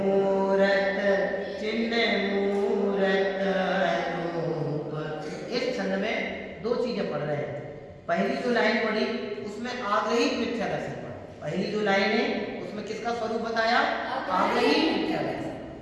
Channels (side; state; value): both; identical; correlation 1.00